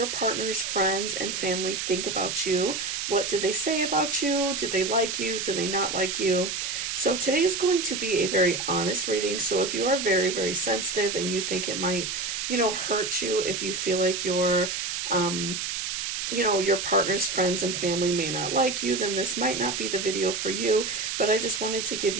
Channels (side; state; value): right; noise; hiss, 3 dB below the sound